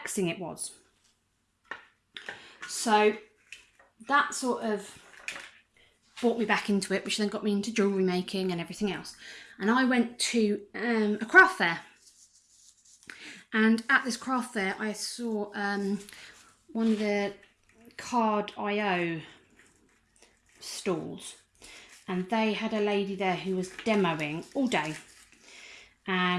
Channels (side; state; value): both; identical; correlation 1.00